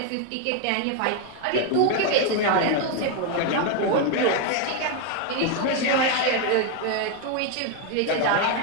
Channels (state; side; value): different; both; correlation 0.01